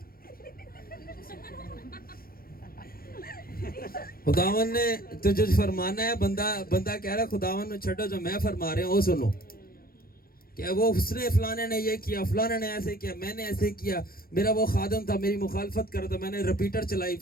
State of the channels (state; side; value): late; right; 0.43 ms